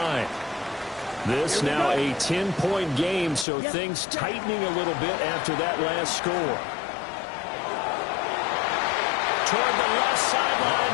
This now a 10-point game, so things tightening a little bit after that last score. Toward the left sideline,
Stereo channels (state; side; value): drops out; right; at 3.5 s